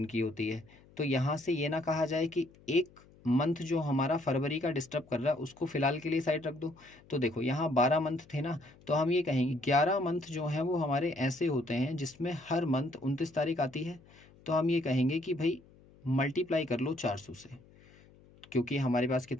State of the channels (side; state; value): left; noise; hum, 26 dB below the sound